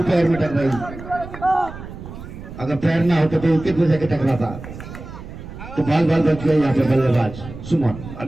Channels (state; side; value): noise; right; rumble, 13 dB below the sound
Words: पैर में टकराई। अगर पैर ना होता तो विकेट में जाके टकराता, तो बाल बाल बच गए यहाँ पे बल्लेबाज सुमन।